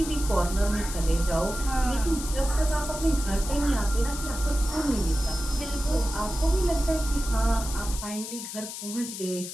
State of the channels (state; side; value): noise; left; hiss, 8 dB below the sound